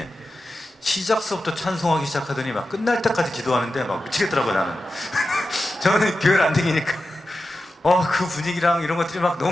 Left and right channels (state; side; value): normal; both; correlation 0.92